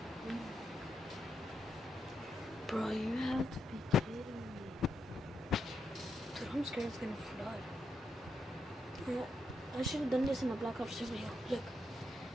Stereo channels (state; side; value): normal; both; correlation 0.82